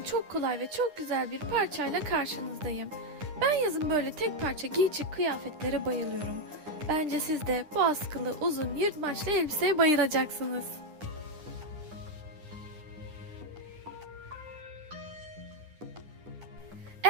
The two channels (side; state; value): left; late; 9.9 ms